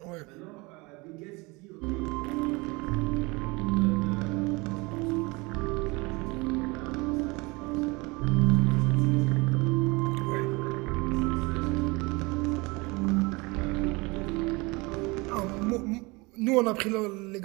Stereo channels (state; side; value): quieter; left; 25.4 dB